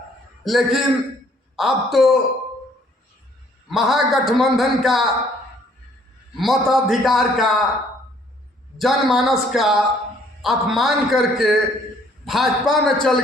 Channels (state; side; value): normal; both; correlation 0.62